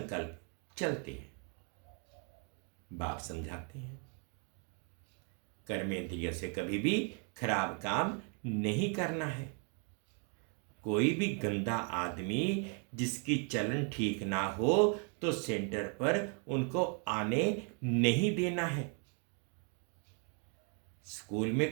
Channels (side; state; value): left; quieter; 39.5 dB